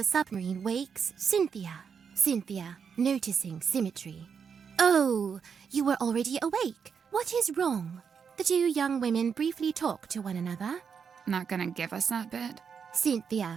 submarine wakes Cynthia. Cynthia, noticing Symmetry. Oh, you were already awake. What is wrong? The two young women briefly talk to one another. Not gonna give us that bit?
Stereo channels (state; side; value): quieter; left; 6.6 dB